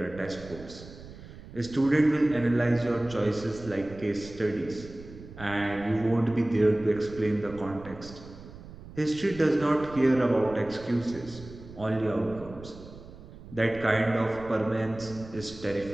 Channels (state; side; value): noise; right; rumble, 16 dB below the sound